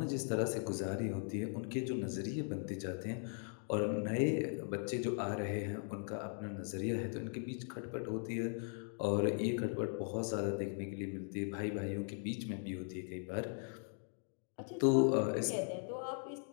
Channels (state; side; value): silent; right; 52 dB below the other